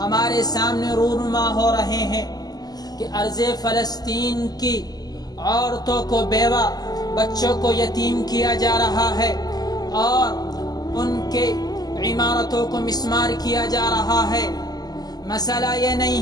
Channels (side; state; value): right; late; 0.19 ms